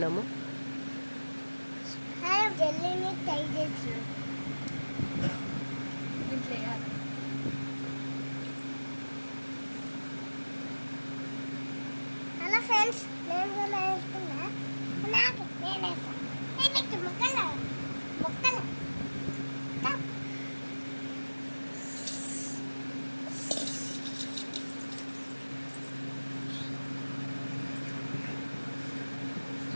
హలో ఫ్రెండ్స్, నేను కూడా వేస్తున్నా. నేను వేస్తాను ముక్కలు ముక్కలు.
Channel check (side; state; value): both; inverted; correlation -1.00